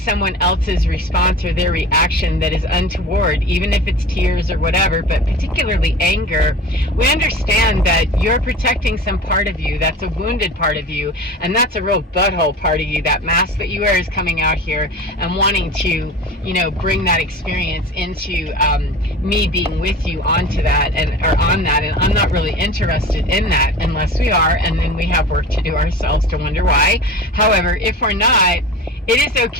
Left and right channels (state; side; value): normal; both; correlation 0.34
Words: else's response or their reaction that is untoward, even if it's tears or whatever, but particularly anger, we understand that you're protecting some part of you. That's a wounded part of you, and that's a real butthole part of you. That mask that you wear is coming out here and wanting to, bring that experience into me being with you onto that and I'm not really interested in that unless we are, and then we have work to do ourselves to wonder why. However, if we're not, it is